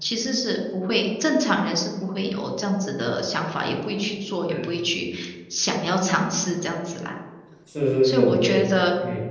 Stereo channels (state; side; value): identical; both; correlation 1.00